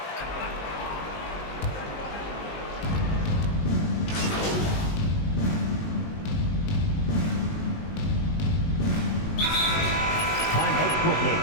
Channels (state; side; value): late; right; 19 ms